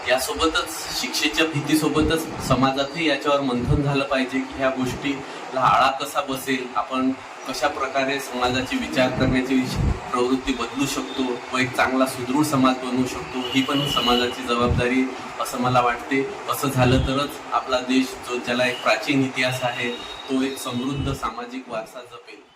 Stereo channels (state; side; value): identical; both; correlation 1.00